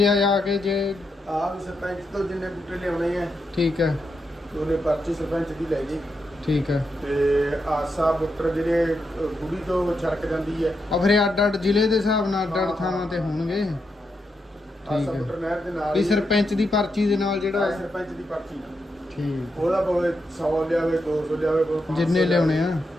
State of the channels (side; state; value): both; normal; correlation 0.84